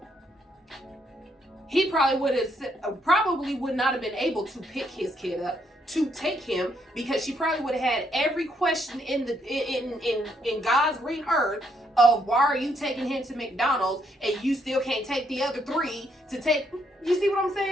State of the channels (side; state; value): both; normal; correlation 0.73